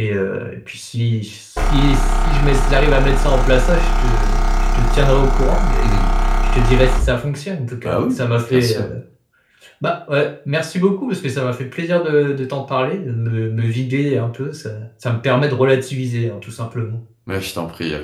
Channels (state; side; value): identical; both; correlation 1.00